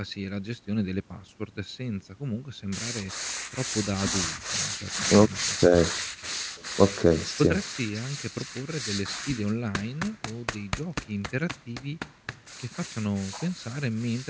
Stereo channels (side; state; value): both; identical; correlation 1.00